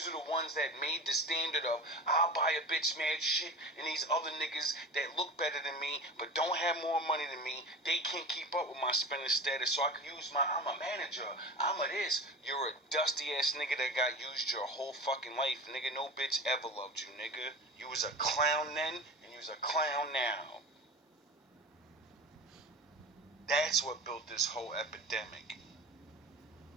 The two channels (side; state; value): both; normal; correlation 0.33